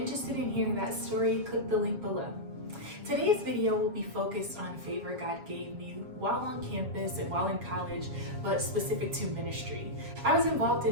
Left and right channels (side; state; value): left; late; 7.3 ms